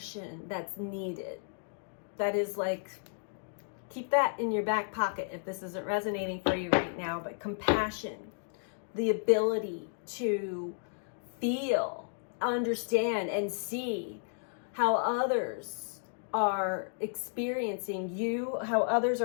that's needed. That is like, keep that in your back pocket if this isn't resonating for you right now, but compassion, the ability to feel, understand, and see how others are experiencing you, how others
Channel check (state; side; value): silent; right; digital silence